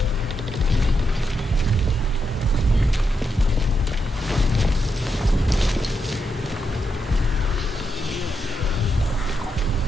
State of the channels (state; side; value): normal; both; correlation 0.84